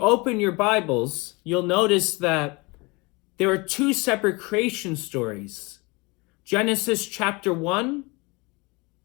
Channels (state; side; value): quieter; right; 26.3 dB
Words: your Bibles, you'll notice that there are two separate creation stories. Genesis chapter 1